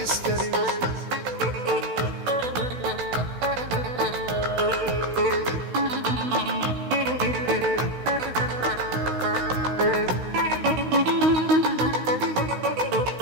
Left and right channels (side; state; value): left; late; 16 ms